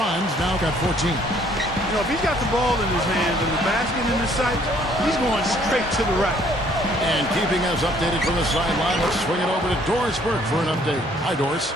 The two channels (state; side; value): normal; both; correlation 0.62